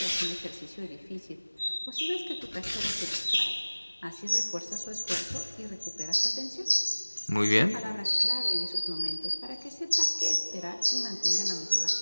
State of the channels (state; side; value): inverted; both; correlation -1.00